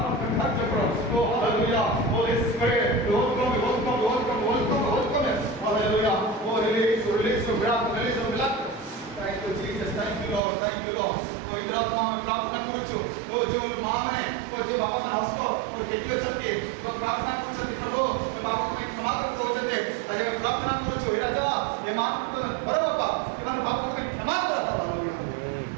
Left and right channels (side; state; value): left; drops out; at 10.4 s